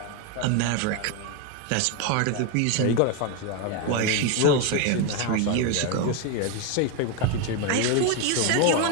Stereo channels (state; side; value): different; both; correlation 0.02